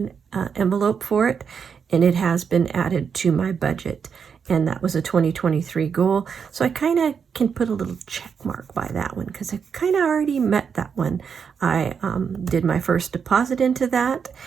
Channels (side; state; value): left; quieter; 6.6 dB